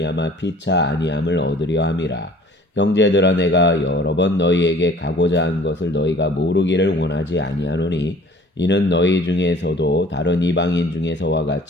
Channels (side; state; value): both; normal; correlation 0.50